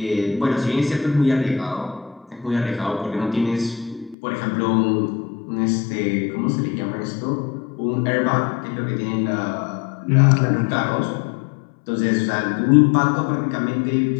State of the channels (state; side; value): drops out; right; at 4.2 s